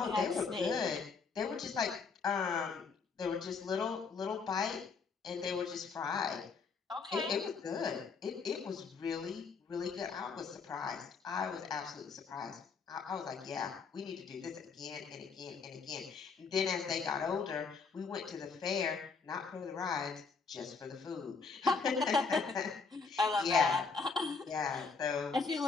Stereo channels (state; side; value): quieter; right; 4.9 dB